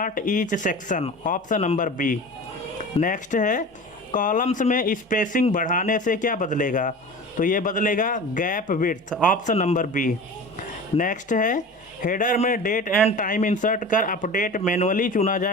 each section. Option number B. Next है कॉलम्स में स्पेसिंग बढ़ाने से क्या बदलेगा? तो ये बदलेगा gap width. Option number B. Next है हेडर में डेट एंड टाइम इंसर्ट कर अपडेट मैनुअली चुना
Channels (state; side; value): normal; both; correlation 0.35